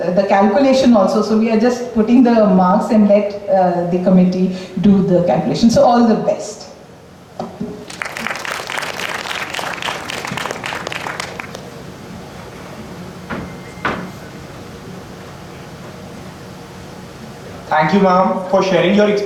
calculation also, so we are just putting the marks and let the committee do the calculation. So all the best. Thank you, ma'am, for sharing your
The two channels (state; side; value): identical; both; correlation 1.00